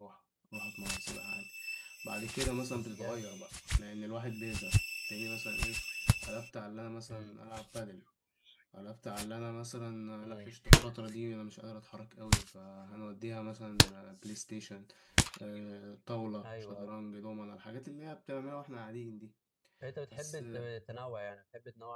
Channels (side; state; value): both; identical; correlation 1.00